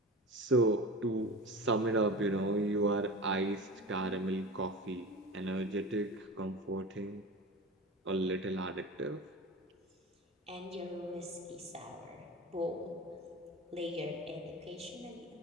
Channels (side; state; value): both; normal; correlation 0.31